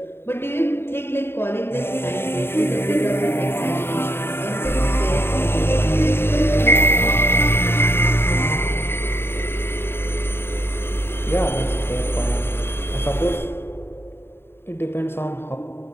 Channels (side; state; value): right; late; 0.11 ms